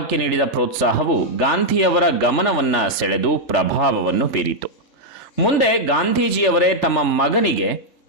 ನೀಡಿದ ಪ್ರೋತ್ಸಾಹವು ಗಾಂಧಿಯವರ ಗಮನವನ್ನ ಸೆಳೆದು ಪ್ರಭಾವವನ್ನು ಬೀರಿತು. ಮುಂದೆ ಗಾಂಧೀಜಿಯವರೇ ತಮ್ಮ ಮಗನಿಗೆ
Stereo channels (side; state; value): right; late; 3.4 ms